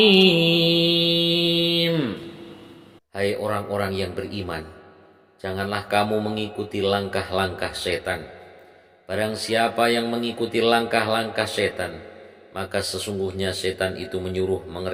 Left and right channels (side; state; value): both; identical; correlation 1.00